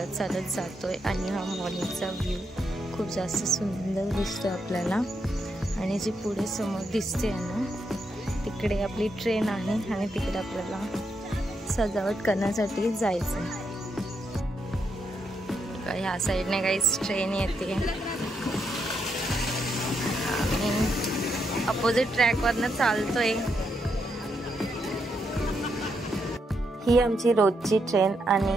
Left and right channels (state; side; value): normal; both; correlation 0.80